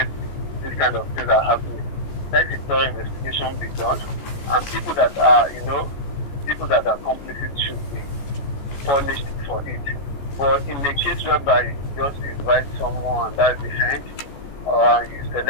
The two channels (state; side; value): late; right; 14 ms